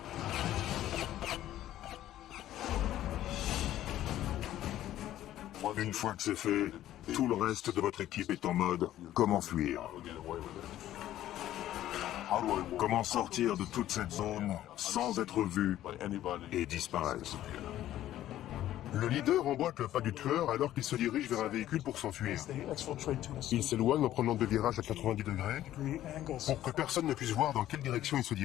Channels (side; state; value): right; quieter; 13.1 dB